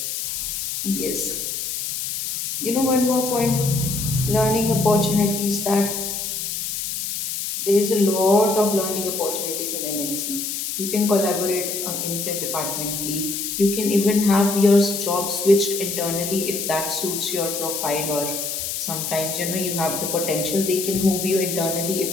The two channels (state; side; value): noise; left; hiss, 3 dB below the sound